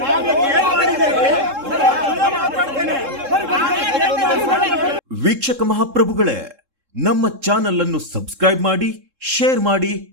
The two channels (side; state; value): left; late; 3.7 ms